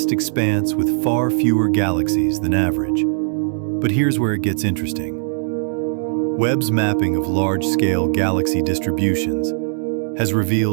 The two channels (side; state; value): left; silent; 66 dB below the other